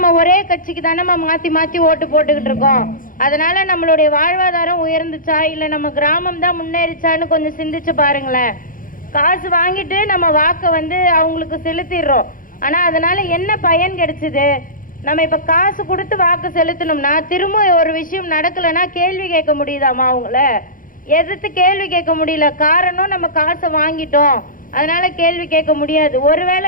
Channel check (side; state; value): right; late; 0.40 ms